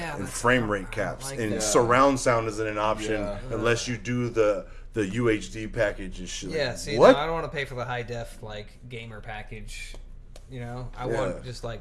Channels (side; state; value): both; identical; correlation 1.00